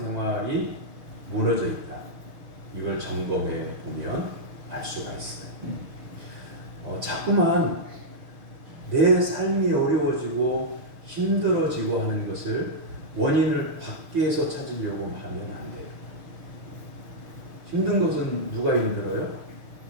무너져 있다. 이걸 점검해 보면 알 수가 있어요. 자꾸만 내 삶이 어려워지고 힘들어지고 하는 것을 원인을 밖에서 찾으려고 하면 안 돼요. 힘든 것은 누가 힘들어요?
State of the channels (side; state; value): left; late; 6.6 ms